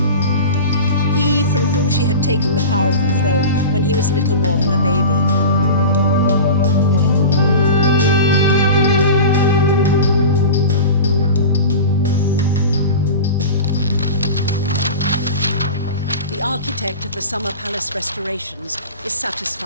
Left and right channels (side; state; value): both; inverted; correlation -0.31